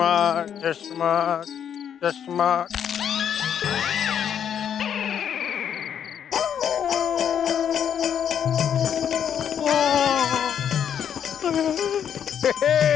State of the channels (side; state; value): right; quieter; 8.7 dB